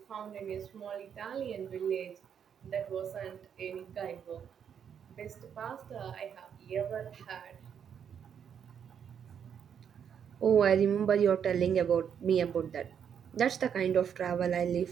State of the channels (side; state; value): left; quieter; 8.0 dB